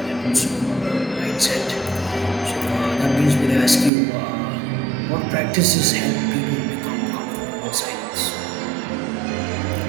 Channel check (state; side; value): drops out; left; at 3.9 s